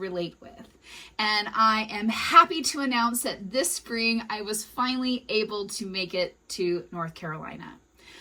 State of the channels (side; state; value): both; identical; correlation 1.00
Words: with. And I am happy to announce that this spring I was finally able to make it to North Carolina.